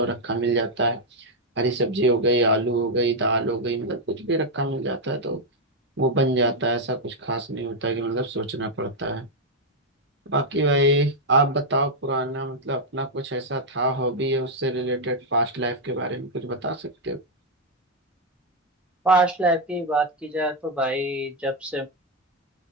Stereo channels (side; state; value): both; normal; correlation -0.01